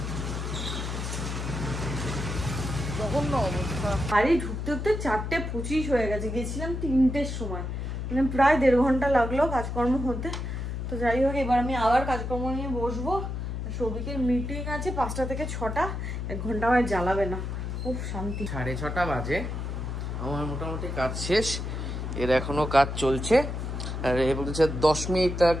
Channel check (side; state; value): left; noise; hum, 4 dB below the sound